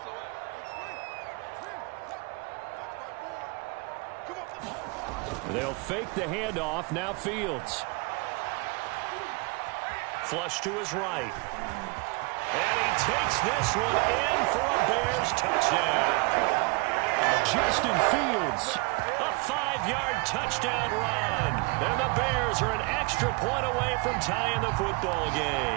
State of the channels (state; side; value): quieter; left; 28.7 dB